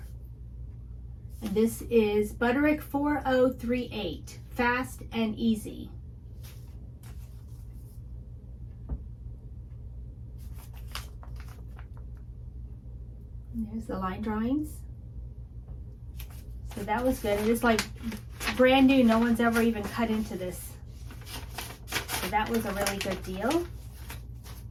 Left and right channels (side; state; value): both; identical; correlation 1.00